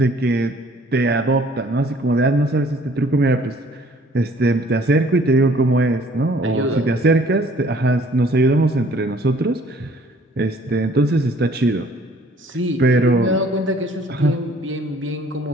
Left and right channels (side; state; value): both; normal; correlation 0.57